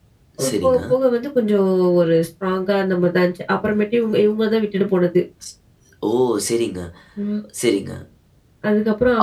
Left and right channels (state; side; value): identical; both; correlation 1.00